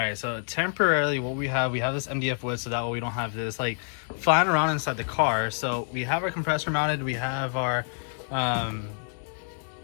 so temporarily what we have this MDF wood, so that way we don't have this like flying around inside the car. So we have our compressor mounted, we have our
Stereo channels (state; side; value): silent; right; 60 dB below the other